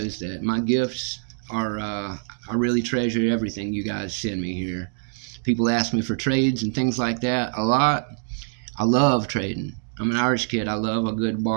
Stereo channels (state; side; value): silent; left; digital silence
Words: that my gifts are, I really treasure everything you guys send me here. People ask me for trades and things like that a lot. I love trading. I'm an Irish kid. I love a good